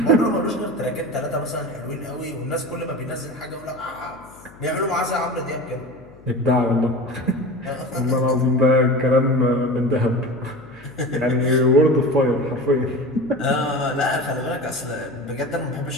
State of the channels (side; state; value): left; noise; hum, 22 dB below the sound